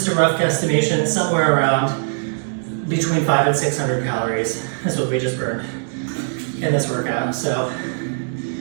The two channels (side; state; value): left; silent; digital silence